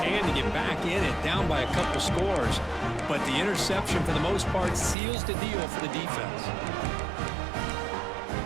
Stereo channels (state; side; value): drops out; left; at 5.0 s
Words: to get back in it, down by a couple scores, but the interception, for the most part, seals the deal for the defense.